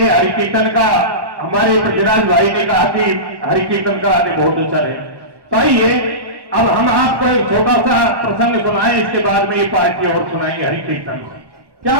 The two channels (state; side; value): late; left; 1.1 ms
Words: हरि कीर्तन का हमारे पृथ्वीराज भाई ने कहा कि हरि कीर्तन का आने बहुत अच्छा है। तो आइए अब हम आपको एक छोटा सा प्रसंग सुनाएं, इसके बाद में ये पार्टी और सुनाएंगे हरि कीर्तन। क्या